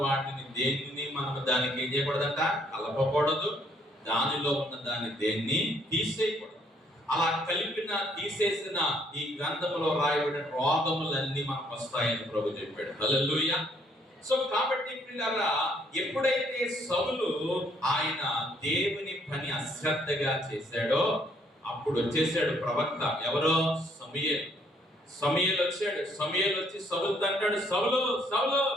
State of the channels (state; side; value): normal; both; correlation 0.67